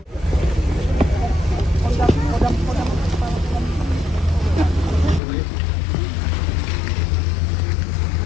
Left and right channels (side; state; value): right; drops out; at 5.2 s